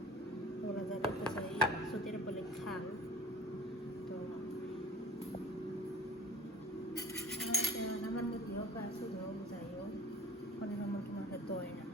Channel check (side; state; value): both; normal; correlation 0.45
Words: ওরা যা দেখতেছে এই সুতির বলে খাল। তো আমার মুরগি হোক আর শুধু হোক যাই হোক অনেক মুরগি মাঝে তো হয় না,